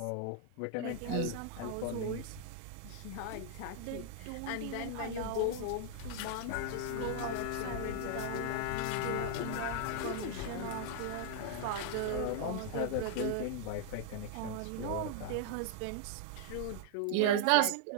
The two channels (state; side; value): different; both; correlation -0.01